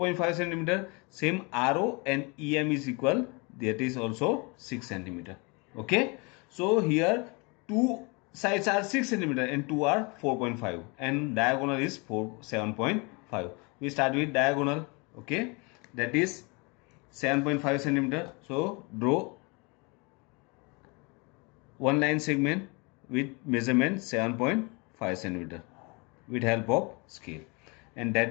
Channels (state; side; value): quieter; right; 29.7 dB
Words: centimeter. Same RO and EM is equal, that is also 6 centimeter. Okay, so here two sides are 6 centimeter and two are 4.5 and diagonal is 7.5. We start with diagonal. Okay, that is 7.5 centimeter. So draw one line segment with measurement 7.5 centimeter with help of scale, and